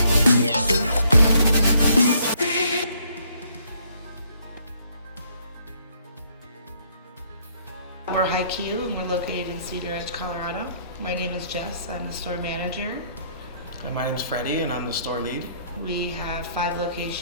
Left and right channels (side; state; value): both; inverted; correlation -0.66